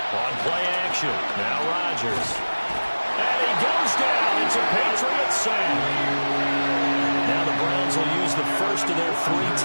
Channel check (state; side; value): inverted; both; correlation -1.00